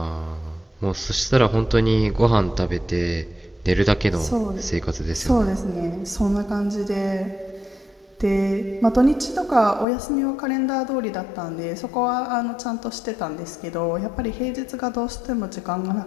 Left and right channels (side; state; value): right; drops out; at 9.9 s